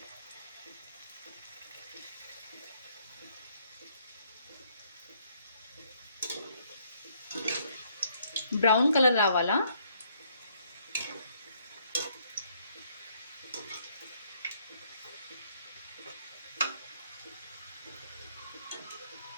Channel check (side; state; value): both; inverted; correlation -0.67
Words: బ్రౌన్ కలర్ రావాలా.